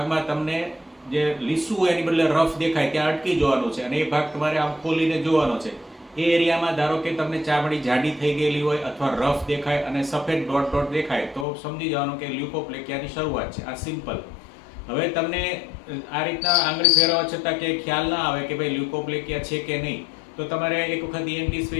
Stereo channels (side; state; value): right; drops out; at 11.5 s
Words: તમને જે લીસું હોય એની બદલે રફ દેખાય ત્યાં અટકી જવાનું છે અને એ ભાગ તમારે આમ ખોલીને જોવાનો છે. એ એરિયામાં ધારો કે તમને ચામડી જાડી થઈ ગયેલી હોય અથવા રફ દેખાય અને સફેદ ડોટ ડોટ દેખાય તો સમજી જવાનું કે લ્યુકોપ્લેકિયાની શરૂઆત છે. આ સિમ્પલ. હવે તમને આ રીતના આંગળી ફેરવવા છતાં કે ખ્યાલ ના આવે કે ભાઈ લ્યુકોપ્લેકિયા છે કે નહીં, તો તમારે એક વખત ENT